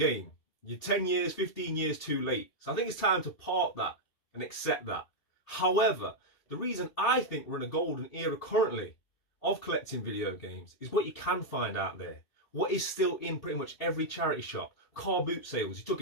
You're 10 years, 15 years too late. So I think it's time to park that and accept that. However, the reason I think we're in a golden era currently of collecting video games is what you can find out there. What is still in pretty much every charity shop. Car boot sales. You took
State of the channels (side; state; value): right; late; 2.7 ms